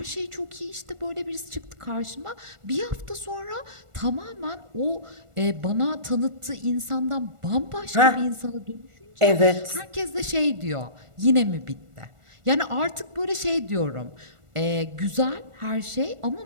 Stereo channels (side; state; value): left; late; 1.4 ms